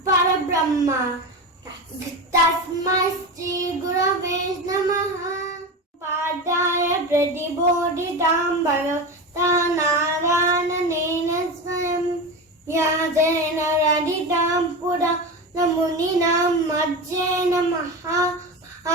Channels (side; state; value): both; normal; correlation 0.23